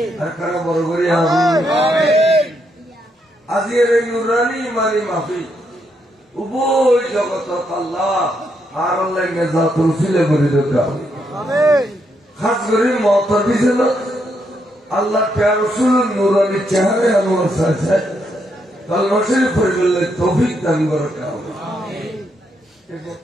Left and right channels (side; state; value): both; normal; correlation 0.78